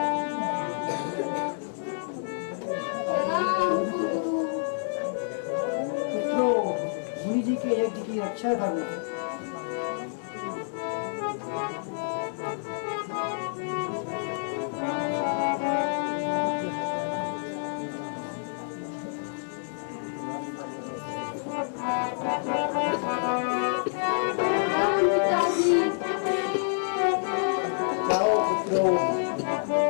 पुत्रों, मुनि जी के यज्ञ की रक्षा करना।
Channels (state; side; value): silent; right; 59 dB below the other